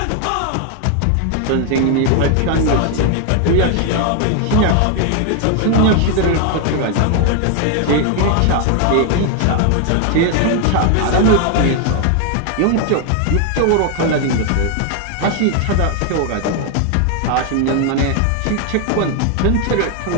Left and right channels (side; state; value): both; different; correlation 0.00